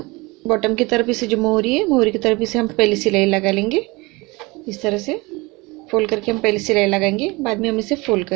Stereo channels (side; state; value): left; quieter; 24.4 dB